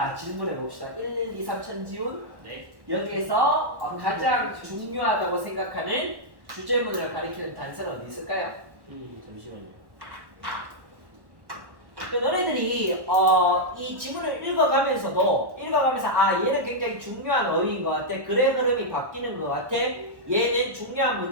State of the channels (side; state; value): left; late; 1.1 ms